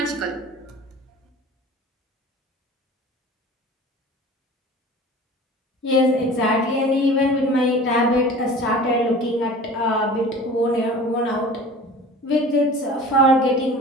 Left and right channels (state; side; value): normal; both; correlation 0.41